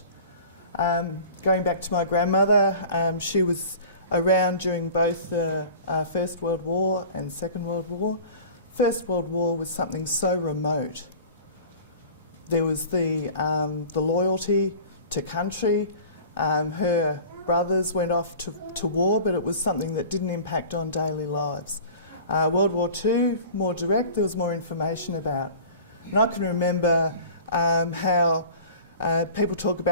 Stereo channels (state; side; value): inverted; both; correlation -0.41